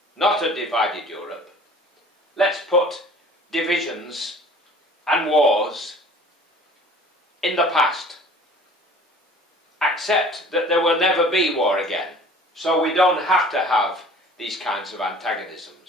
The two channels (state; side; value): normal; both; correlation 0.48